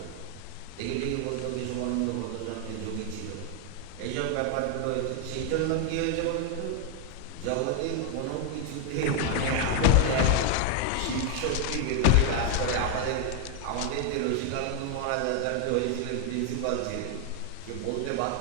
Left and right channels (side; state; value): both; different; correlation 0.01